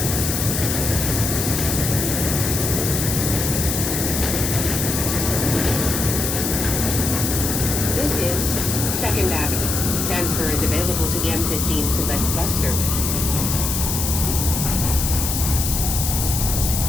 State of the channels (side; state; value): left; noise; hiss, 1 dB below the sound